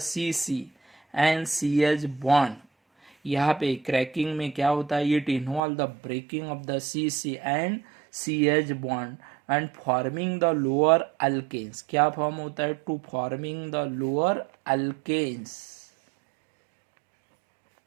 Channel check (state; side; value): drops out; left; at 5.6 s